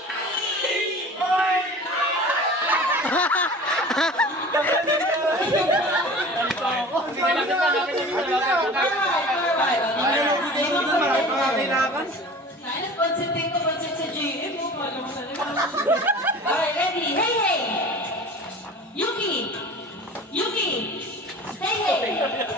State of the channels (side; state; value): both; normal; correlation 0.40